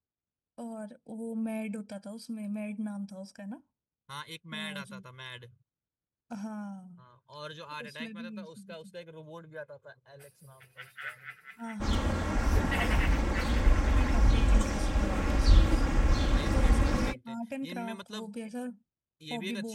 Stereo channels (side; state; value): both; identical; correlation 1.00